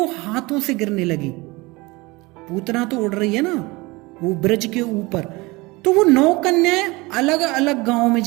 हाथों से गिरने लगी। पूतना तो उड़ रही है ना वो ब्रज के ऊपर, तो वो 9 कन्याएं अलग अलग गांव में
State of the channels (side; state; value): left; quieter; 23.4 dB